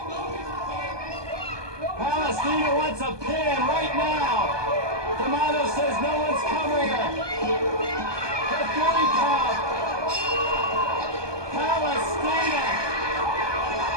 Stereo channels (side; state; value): left; late; 1.2 ms